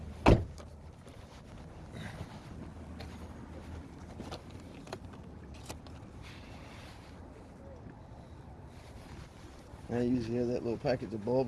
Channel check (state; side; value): identical; both; correlation 1.00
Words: I usually have that little package of